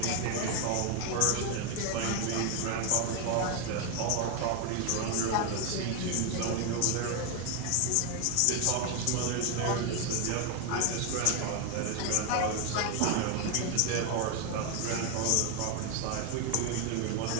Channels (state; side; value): different; both; correlation 0.01